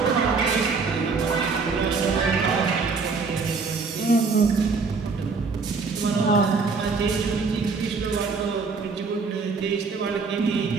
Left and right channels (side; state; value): left; quieter; 4.6 dB